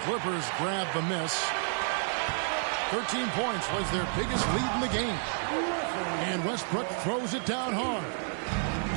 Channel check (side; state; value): left; silent; 58 dB below the other